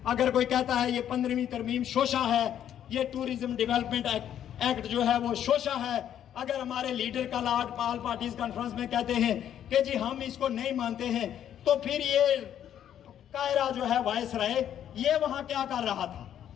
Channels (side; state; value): right; quieter; 10.2 dB